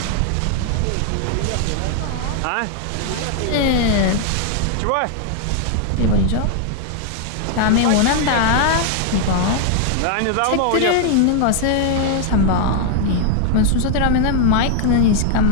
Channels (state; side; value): different; both; correlation 0.00